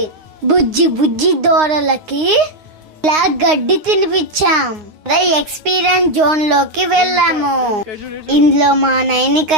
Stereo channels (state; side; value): late; left; 9.6 ms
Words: బుజ్జి బుజ్జి దూడలకి ఇలా గడ్డి తినిపించాం. ఎక్స్పీరియన్స్ జోన్ లోకి వెళ్ళాము. ఇందులో మా నైనిక